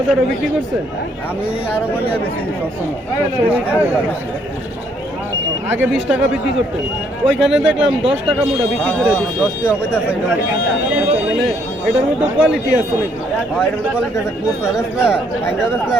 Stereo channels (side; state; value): both; normal; correlation 0.68